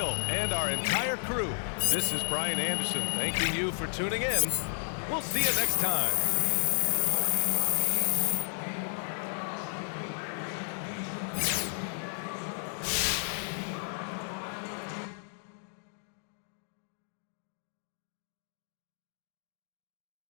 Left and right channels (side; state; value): right; silent; digital silence